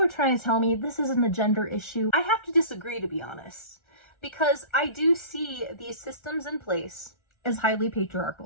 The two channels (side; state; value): right; late; 1.4 ms